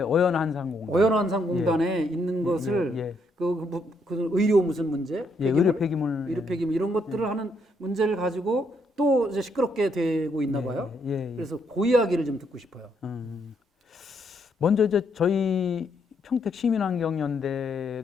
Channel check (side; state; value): both; normal; correlation 0.74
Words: 어연한산공단에 있는 것을 그 의료 무슨 문제, 의료 폐기물, 이런 것들을 하는 문제를 가지고 또 이제 시끄럽게 되고 있나 봐요. 그래서 그 이야기를 좀 듣고 싶어요. 먼저 이제 저희 평택